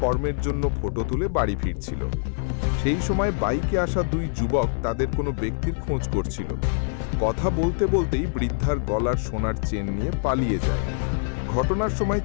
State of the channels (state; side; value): silent; right; digital silence